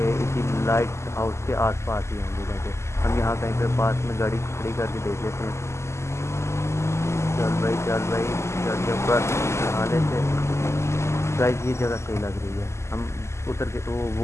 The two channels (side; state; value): right; late; 0.13 ms